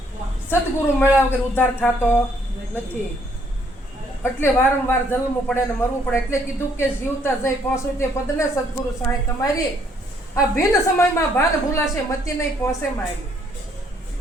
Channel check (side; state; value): both; normal; correlation 0.67